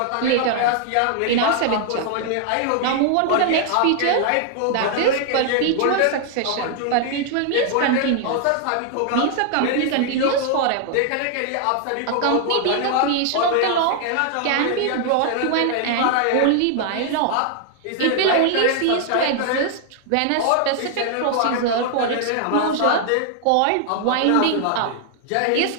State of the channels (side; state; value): both; different; correlation 0.00